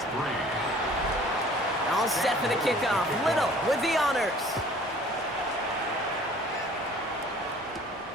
3. All set for the kickoff. Little with the honors.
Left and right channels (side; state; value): both; normal; correlation 0.51